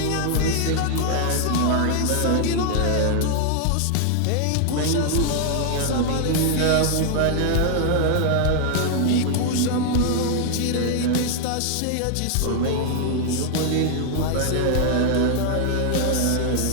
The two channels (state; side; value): different; both; correlation 0.00